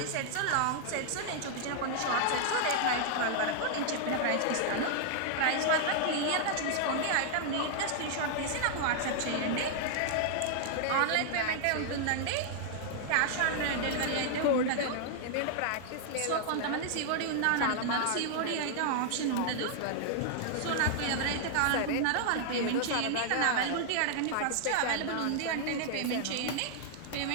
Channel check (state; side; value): different; both; correlation -0.01